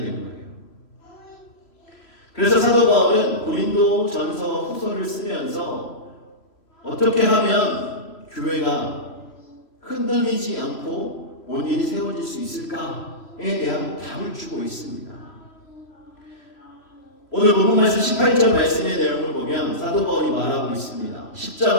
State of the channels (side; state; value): right; late; 3.0 ms